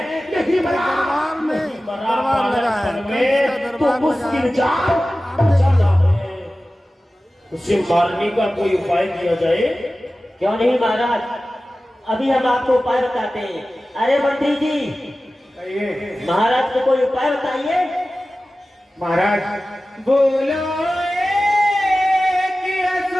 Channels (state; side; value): normal; both; correlation 0.96